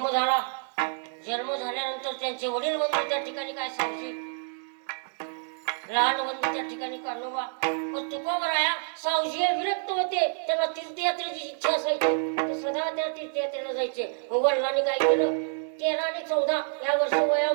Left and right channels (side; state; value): left; silent; digital silence